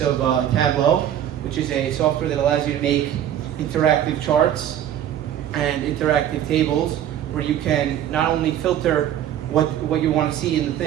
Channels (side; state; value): left; quieter; 10.8 dB